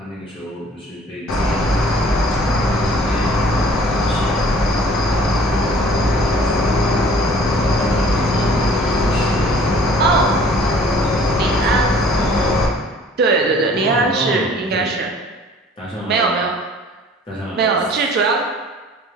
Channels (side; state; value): both; normal; correlation 0.53